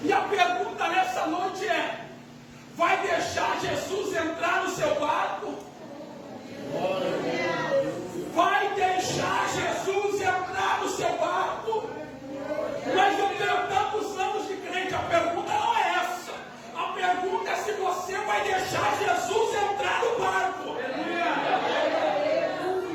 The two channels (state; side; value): identical; both; correlation 1.00